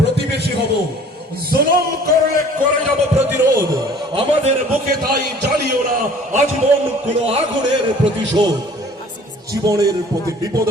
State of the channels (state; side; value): normal; both; correlation 0.51